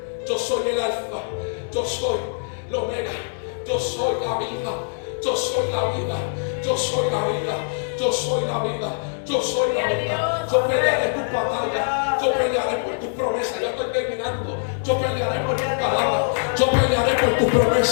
yo soy el alfa, yo soy el omega, yo soy la vida, yo soy la vida, yo soy la vida, yo soy la vida. Yo soy la vida. Yo pelearé tu batalla. Yo pelearé por tus promesas. Ya estoy terminando. Yo pelearé por tus palabras. Yo pelearé por tus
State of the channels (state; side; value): silent; right; 63 dB below the other